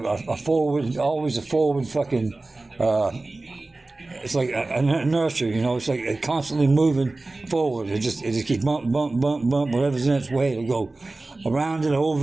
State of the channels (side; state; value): left; quieter; 3.1 dB